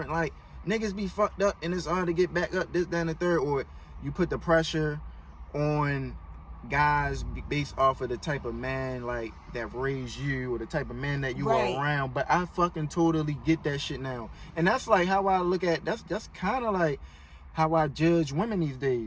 Like, niggas be fucked up and it's hard to get back up, this, that, and the third. Or you put the pressure on guys based off of the type of man, like, that raised you, or the type of man that you are around. But I fucking totally get that shit now. And that's like how I look at, that's kind of like how I judge women these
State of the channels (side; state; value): both; identical; correlation 1.00